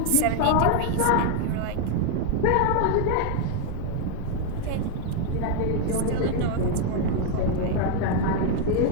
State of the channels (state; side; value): different; both; correlation 0.00